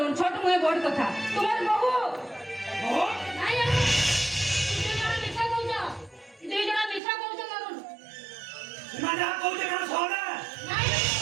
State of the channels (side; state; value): left; drops out; at 7.0 s